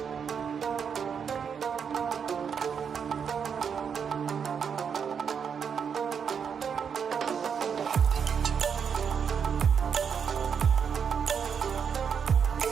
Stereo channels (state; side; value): quieter; left; 7.0 dB